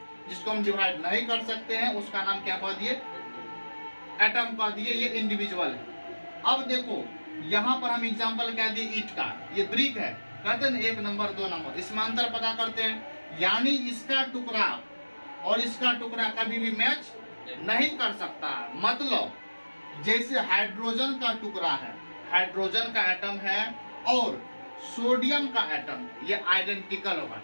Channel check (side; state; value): both; inverted; correlation -1.00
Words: जिसको हम डिवाइड नहीं कर सकते हैं उसका नाम क्या कह दिए, एटम कह दिए। ये इंडिविजुअल है। अब देखो यहाँ पर हम एग्जाम्पल क्या दिए, ईट का, ये ब्रिक है, कहते हैं 1 नंबर 2 नंबर, इसमें अंतर पता करते हैं। यानी इसका टुकड़ा और इसका टुकड़ा कभी भी मैच नहीं कर सकता। मतलब जैसे हाइड्रोजन का टुकड़ा है, हाइड्रोजन का एटम है और सोडियम का एटम, ये आइडेंटिकल होगा।